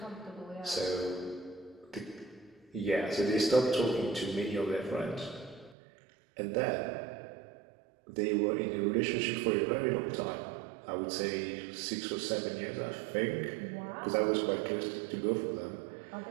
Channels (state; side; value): drops out; left; at 5.8 s